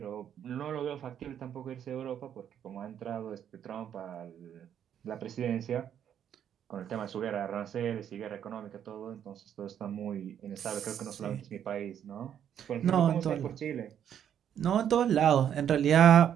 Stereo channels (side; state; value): left; quieter; 9.4 dB